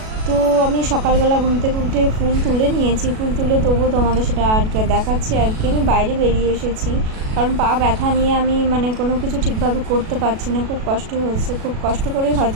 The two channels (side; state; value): left; late; 37 ms